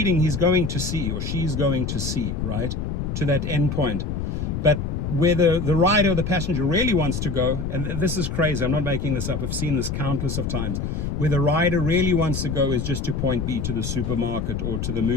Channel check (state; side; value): noise; left; rumble, 3 dB below the sound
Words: he's going to C or she's going to C, right? To that end point. But where the rider or the passenger really wants to go, and this is crazy, I'm not making this up, I've seen this countless of times, where the rider really wants to go is just to point B, to the supermarket or to the